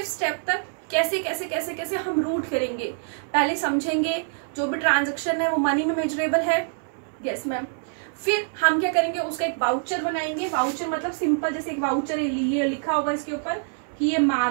स्टेप तक कैसे कैसे कैसे कैसे हम रूट करेंगे। पहले समझेंगे जो भी ट्रांजैक्शन है वो मनी में मेजरेबल है, यस मैम। फिर हम क्या करेंगे, उसका एक वाउचर बनाएंगे। वाउचर मतलब सिंपल, जैसे एक वाउचर ये लिखा होगा इसके ऊपर कि ये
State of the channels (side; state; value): left; silent; 62 dB below the other